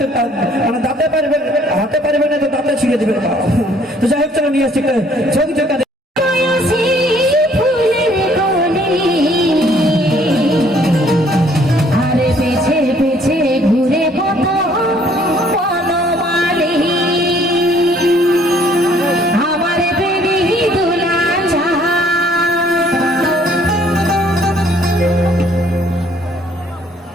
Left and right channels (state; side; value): normal; both; correlation 0.61